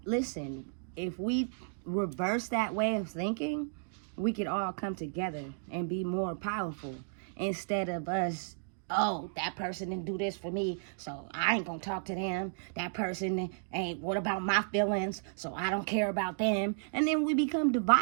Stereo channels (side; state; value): left; silent; digital silence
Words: listen, if we reverse that way of thinking, we could all come together and be more powerful instead of us, oh, that person didn't do this for me, so I ain't gonna talk to them. That person ain't, what about my feelings? So I don't care about them. And then we become